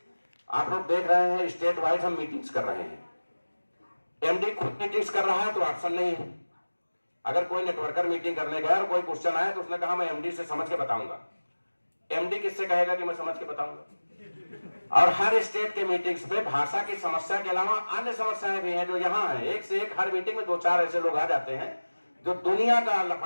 आप लोग देख रहे हैं स्टेट वाइज हम मीटिंग्स कर रहे हैं। MD खुद मीटिंग्स कर रहा है तो ऑप्शन नहीं है। अगर कोई नेटवर्कर मीटिंग करने गया और कोई क्वेश्चन आया तो उसने कहा मैं MD से समझ के बताऊंगा। MD किससे कहेगा कि मैं समझ के बताऊंगा? और हर स्टेट के मीटिंग्स पे भाषा की समस्या के अलावा अन्य समस्याएं भी हैं जो यहाँ है। एक से एक हर मीटिंग में 2-4 ऐसे लोग आ जाते हैं जो दुनिया का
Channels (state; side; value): inverted; both; correlation -1.00